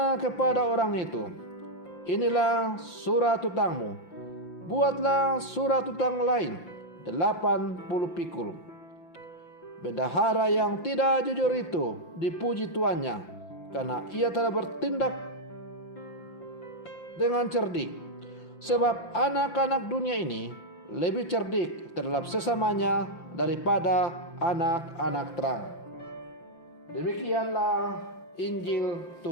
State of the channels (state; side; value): late; right; 5.9 ms